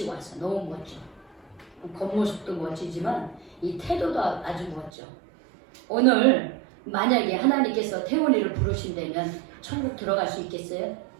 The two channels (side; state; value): left; drops out; at 4.9 s